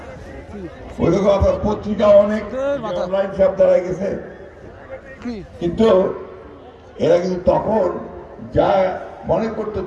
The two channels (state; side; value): identical; both; correlation 1.00